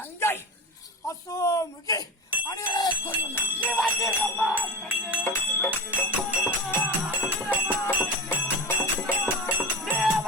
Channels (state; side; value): normal; both; correlation 0.26